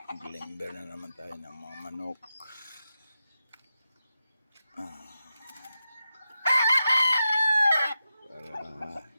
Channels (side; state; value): both; inverted; correlation -0.89